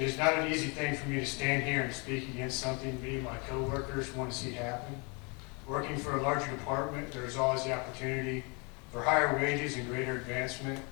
is not an easy thing for me to stand here and speak against something me and my coworkers want to see happen. Working for a larger department, there is always the opportunity for higher wages and greater advancement,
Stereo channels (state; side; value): quieter; right; 32.0 dB